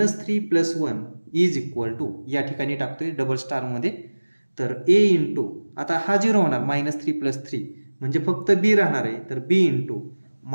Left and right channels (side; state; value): both; inverted; correlation -1.00